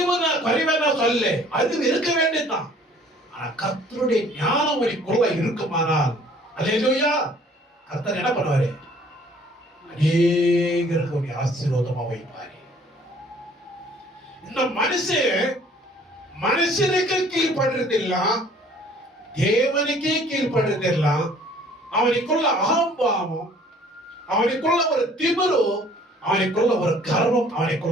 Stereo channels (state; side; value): normal; both; correlation 0.56